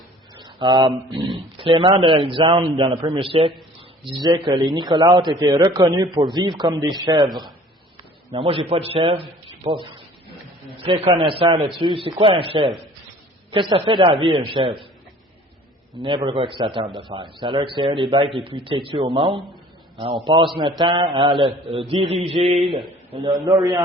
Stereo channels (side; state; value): both; normal; correlation 0.50